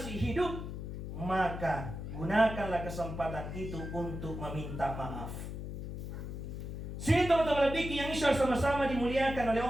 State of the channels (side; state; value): left; noise; hum, 7 dB below the sound